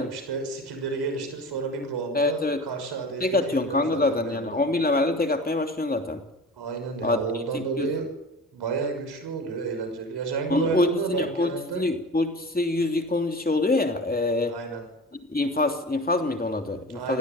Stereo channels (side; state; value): both; normal; correlation 0.35